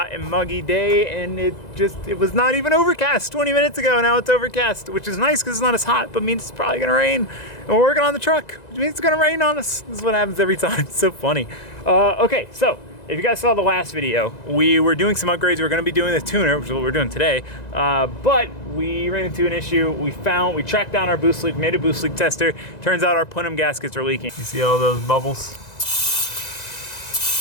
and muggy day, and it was not even overcast 20 minutes ago. Now it's overcast, which is nice because it's not as hot, but means it's probably gonna rain. And we're working on the truck, which means it's gonna rain on us. This is what happens every time. It's so funny. Okay, so if you guys saw the last video, we were doing some upgrades. We were gonna be doing the tuner, which is what we're doing today, but we ran into an issue. We tracked down our boost leak, made a boost leak tester. Turns out our plenum gaskets are leaking. You see all those bubbles?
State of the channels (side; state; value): right; late; 1.9 ms